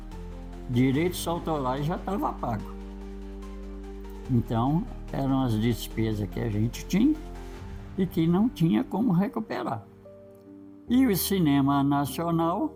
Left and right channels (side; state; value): both; identical; correlation 1.00